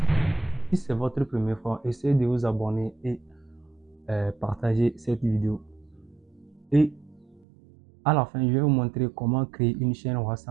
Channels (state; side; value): drops out; left; at 7.5 s